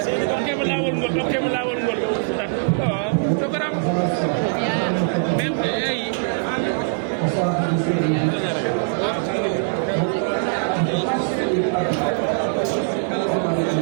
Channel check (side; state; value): left; silent; digital silence